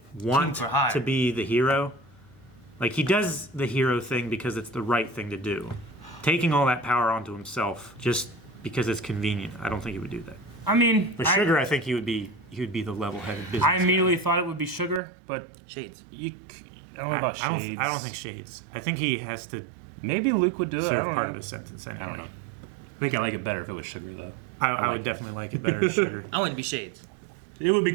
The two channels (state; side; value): drops out; left; at 15.0 s